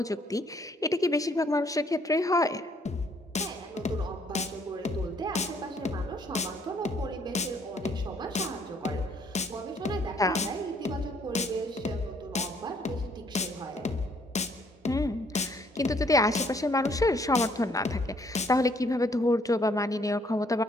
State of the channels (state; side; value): normal; both; correlation 0.65